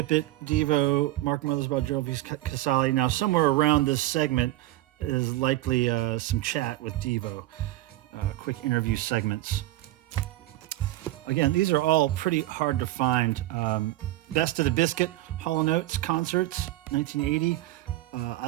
It, Devo, Mark Mothersbaugh, Gerald V. Casale. Now, somewhere around this segment is likely some chat with Devo, quick interview segments. Again, these are all pretty hard to find. Best of the Biscuit, Hall & Oates concerts, 1980. I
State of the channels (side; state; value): left; quieter; 16.3 dB